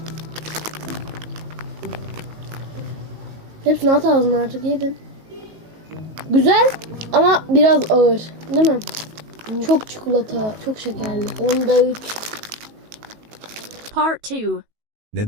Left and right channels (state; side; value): late; left; 19 ms